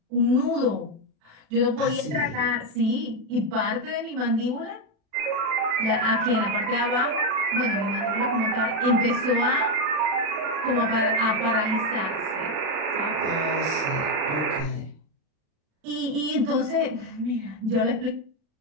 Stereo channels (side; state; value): left; late; 36 ms